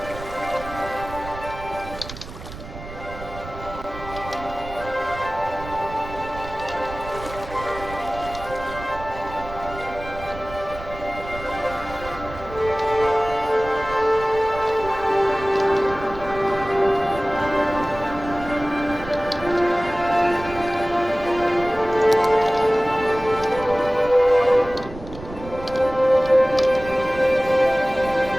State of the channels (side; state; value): right; noise; rumble, 13 dB below the sound